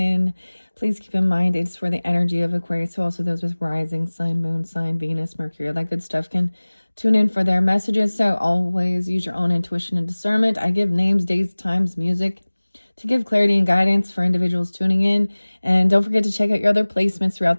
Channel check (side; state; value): both; inverted; correlation -1.00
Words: Please keep in mind it's for the energy of Aquarius, so also those with rising sign, moon sign, Venus, Mercury, all that good stuff can tune in for their messages. So always use your own intuition and discernment. I give names, dates, times, music to give clarity and guidance for individuals tuning in. And don't forget to check out your other placements throughout